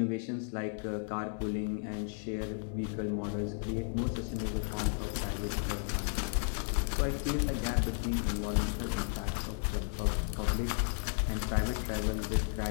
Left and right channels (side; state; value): right; silent; 55 dB below the other